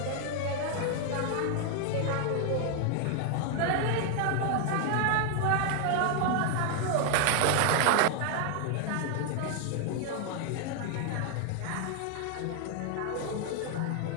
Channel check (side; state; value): both; different; correlation 0.00